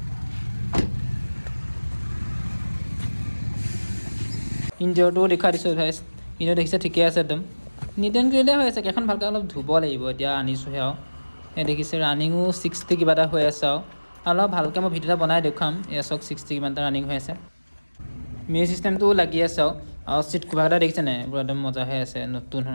ইঞ্জিনটোও দেখুৱাই দিছোঁ গাইছ ইঞ্জিন দেখিছে ঠিকে আছে একদম নিট এণ্ড ক্লিয়াৰ হৈ আছে কেইখন ভালকৈ অলপ ধুব লাগিব এতিয়া আনিছোঁহে আৰু এই দেখিছে ৰানিঙো 60 কিবা এটা হৈ আছে আৰু অলপ ভালকৈ মই ভিডিঅ' এটা বনাই দেখুৱাম এয়া চাওক 60 কিমান এটা ৰানিং হৈ আছে মিউজিক চিষ্টেমটোও লাগি আছে আৰু চিট কভাৰকেইটা দেখিছে নাই এইবোৰ একদম মজা হৈ আছে নতুন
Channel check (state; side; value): inverted; both; correlation -1.00